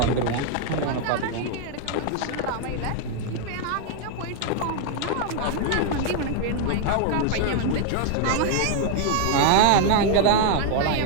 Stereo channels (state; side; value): different; both; correlation 0.00